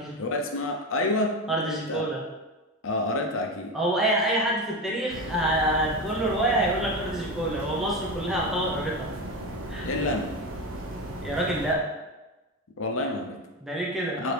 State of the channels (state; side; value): normal; both; correlation 0.19